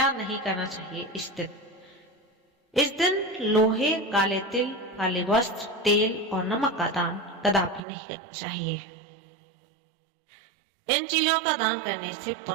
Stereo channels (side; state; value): left; drops out; at 7.8 s